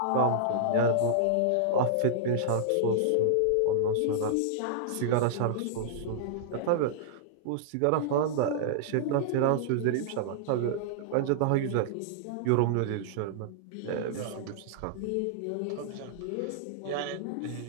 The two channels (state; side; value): different; both; correlation -0.02